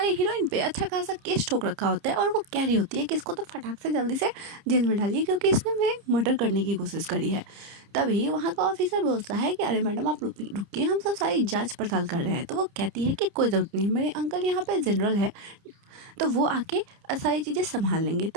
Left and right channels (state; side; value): late; left; 30 ms